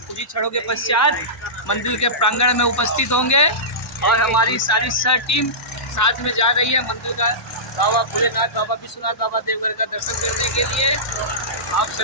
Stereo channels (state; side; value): normal; both; correlation -0.19